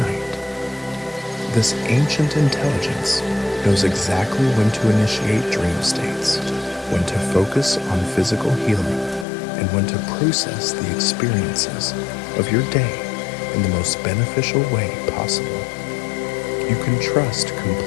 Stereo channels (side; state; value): right; drops out; at 9.2 s